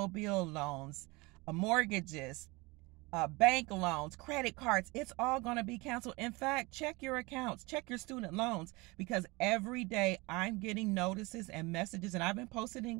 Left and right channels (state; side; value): quieter; left; 24.4 dB